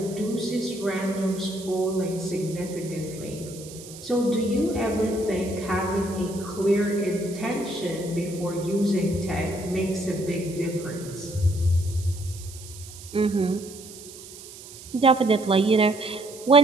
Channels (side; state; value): right; noise; hiss, 16 dB below the sound